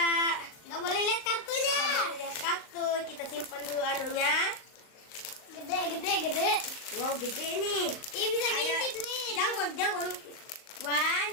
Gak boleh lihat kartunya. Kita mau lihat kartu. Kita simpan dulu anunya. Gede. Wow gede nih. Ini bisa Ayo. ngintip nih. Jangan ngintip. 1,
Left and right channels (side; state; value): right; late; 38 ms